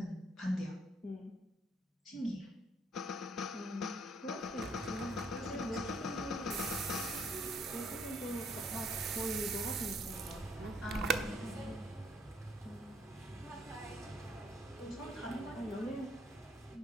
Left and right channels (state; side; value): normal; both; correlation 0.67